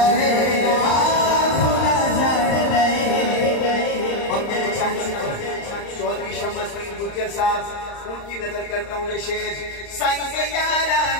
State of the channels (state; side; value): late; right; 35 ms